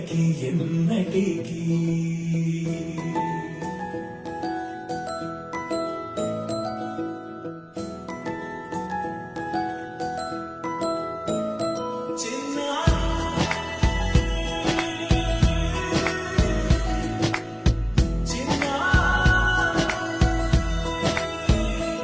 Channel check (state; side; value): identical; both; correlation 1.00